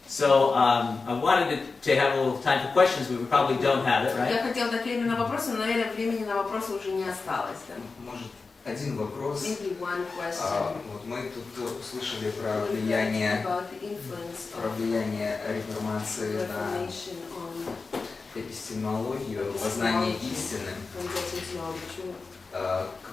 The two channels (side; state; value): right; quieter; 4.2 dB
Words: So I wanted to have a little time for questions. We probably don't have it, right? Я хотела дать время на вопросы, но, наверное, времени на вопросы уже не осталось. Да? Может, один вопрос. Maybe one question. Вот мы тут услышали про влияние реформации на эпистемологию, познание истины,